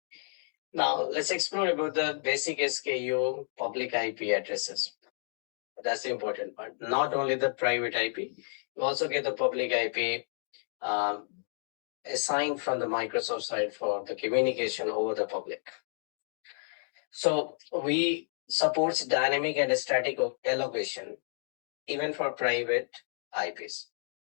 Now let's explore about the basic SKU public IP addresses. That's the important part. Not only the private IP, you also get the public IP assigned from the Microsoft side for the communication over the public. So we supports dynamic and static allocation even for private IPs.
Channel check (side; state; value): right; silent; digital silence